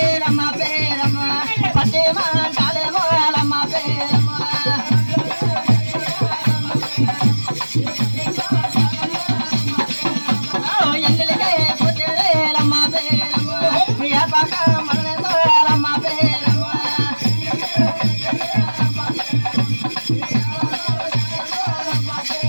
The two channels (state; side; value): inverted; both; correlation -1.00